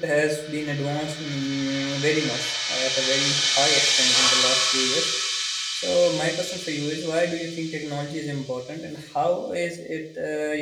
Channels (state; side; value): identical; both; correlation 1.00